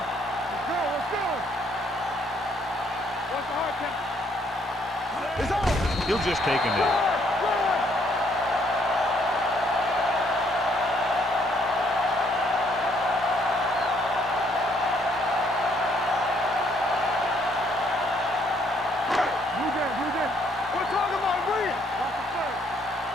Let's go. What's the hard count? It's on. He'll just take him in.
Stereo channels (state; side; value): normal; both; correlation 0.68